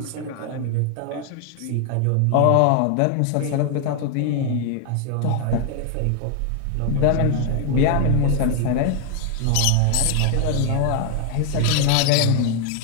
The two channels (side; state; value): both; different; correlation 0.00